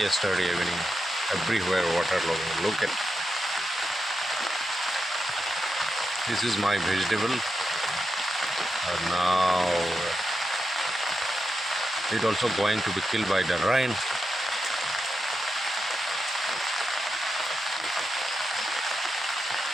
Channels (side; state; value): both; normal; correlation 0.87